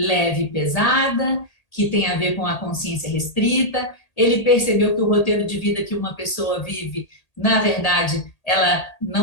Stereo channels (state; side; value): late; right; 1.8 ms